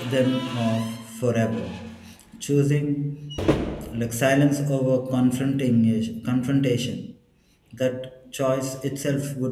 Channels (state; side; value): identical; both; correlation 1.00